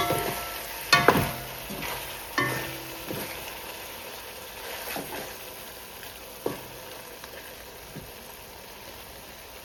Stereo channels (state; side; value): identical; both; correlation 1.00